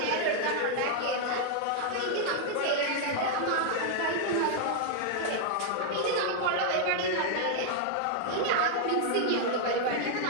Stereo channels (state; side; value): different; both; correlation 0.00